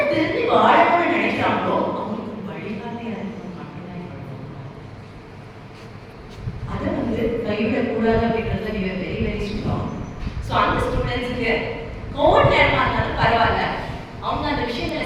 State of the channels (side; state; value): both; identical; correlation 1.00